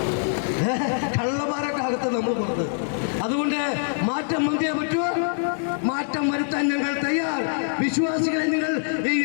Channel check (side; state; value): right; silent; digital silence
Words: കള്ളന്മാരൊക്കെ അകത്ത് നമ്മൾ പുറത്ത്. അതുകൊണ്ട് മാറ്റം വന്നേ പറ്റുമോ? മാറ്റം വരുത്താൻ ഞങ്ങൾ തയ്യാർ. വിശ്വാസികളെ, നിങ്ങൾ ഈ